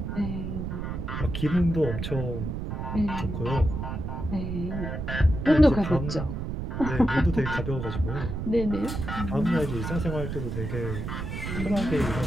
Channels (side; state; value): right; noise; rumble, 4 dB below the sound